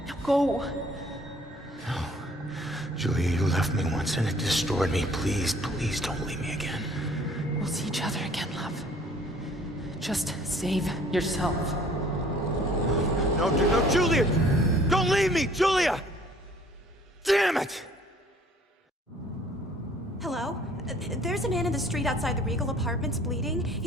Now go. No. Julia, you left me once and it destroyed me. Please don't leave me again. We'll see each other again, love. Just save yourself. No, Julia! Don't leave me, Julia! Damn it! Hello? There's a man in the street outside the Regal Apartments bleeding.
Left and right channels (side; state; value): both; normal; correlation 0.56